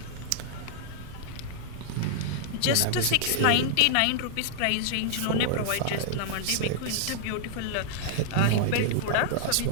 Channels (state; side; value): different; both; correlation -0.01